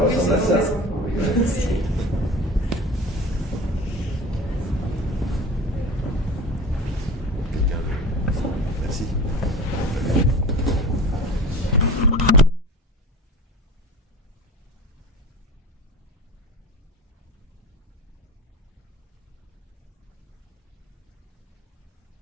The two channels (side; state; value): both; normal; correlation 0.36